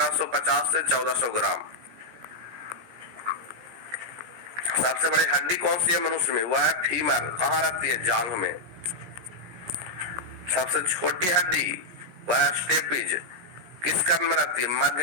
से 1400 ग्राम। सबसे बड़ी हड्डी कौन सी है मनुष्य में? वह है फीमर। कहाँ रहती है? जांघ में। सबसे छोटी हड्डी वह है स्टेपिज। किस कर्ण में रहती है?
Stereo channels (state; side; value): late; left; 17 ms